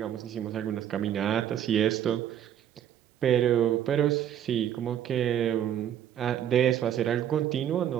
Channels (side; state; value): left; quieter; 10.3 dB